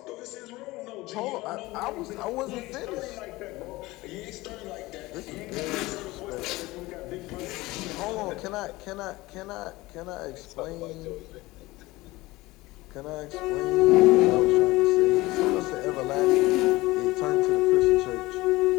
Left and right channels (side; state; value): right; quieter; 20.1 dB